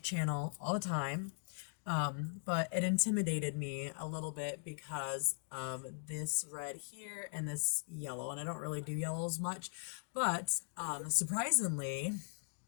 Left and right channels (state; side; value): silent; right; digital silence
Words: all the time, but it intimidated me a little bit because of this red here and this yellow, and I don't really do yellows much, but surprisingly,